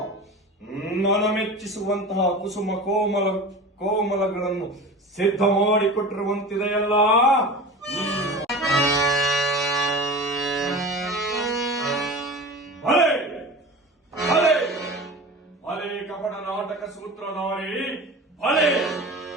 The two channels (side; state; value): both; normal; correlation 0.33